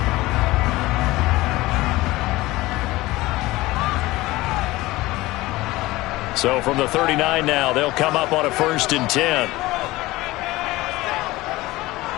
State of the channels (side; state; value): right; quieter; 19.1 dB